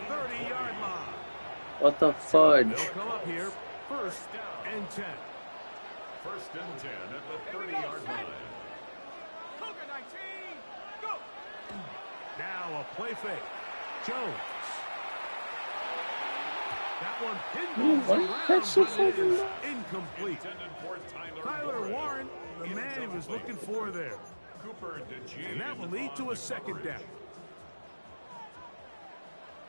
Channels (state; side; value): inverted; both; correlation -1.00